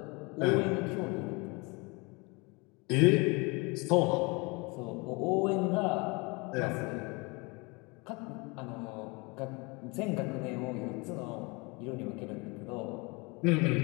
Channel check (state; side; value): quieter; right; 28.0 dB